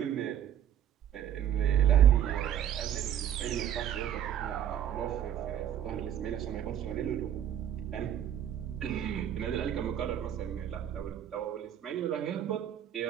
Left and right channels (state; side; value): quieter; left; 10.0 dB